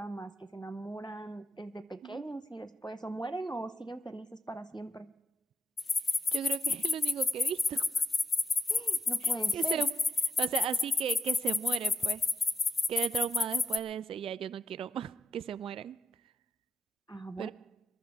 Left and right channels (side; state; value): both; normal; correlation 0.80